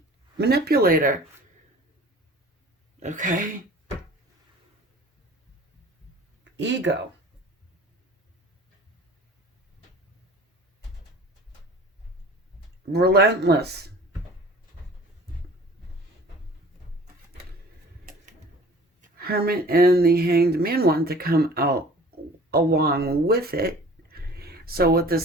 Manipulator. Okay. Ego. Relentless. Hermit and the Hanged Man want to come out along with it. So what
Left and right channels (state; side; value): normal; both; correlation 0.46